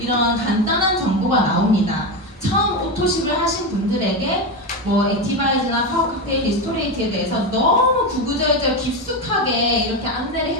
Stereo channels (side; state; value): both; normal; correlation 0.15